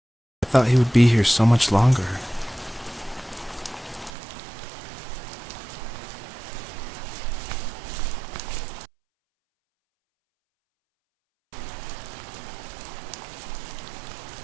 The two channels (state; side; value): drops out; left; at 4.1 s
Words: I thought he would be here so much longer.